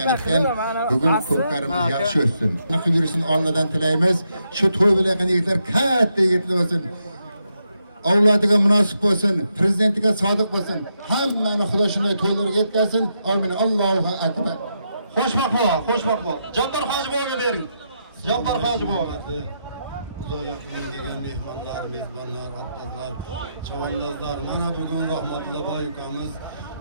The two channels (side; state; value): both; inverted; correlation -0.81